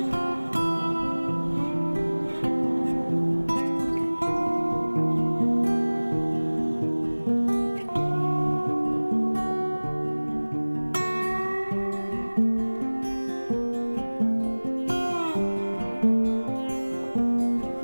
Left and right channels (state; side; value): inverted; both; correlation -1.00